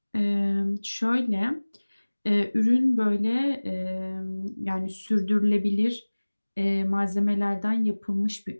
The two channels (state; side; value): inverted; both; correlation -1.00